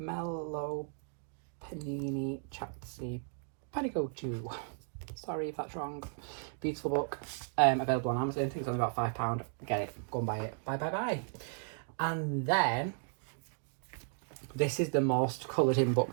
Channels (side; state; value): left; silent; 54 dB below the other